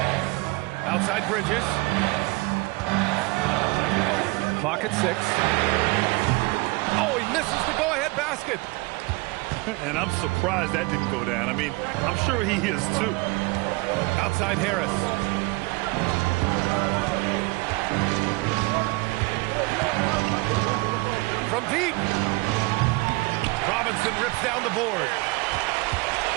Outside Bridges. Clock at 6. Oh, he misses the go-ahead basket. And I'm surprised that didn't go down. I mean, I'm sure he is too. Outside Harris. From deep. Robinson rips down the board.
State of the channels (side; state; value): left; quieter; 24.6 dB